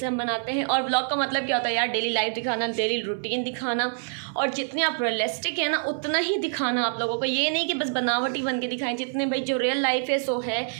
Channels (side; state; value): left; silent; digital silence